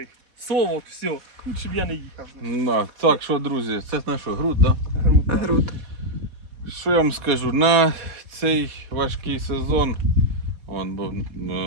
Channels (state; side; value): late; left; 4.2 ms